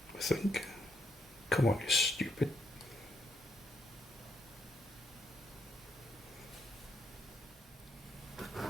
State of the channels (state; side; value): normal; both; correlation 0.75